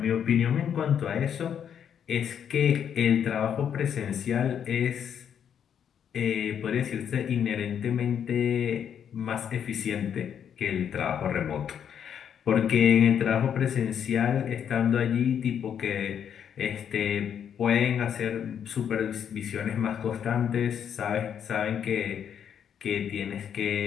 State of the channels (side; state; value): right; quieter; 8.5 dB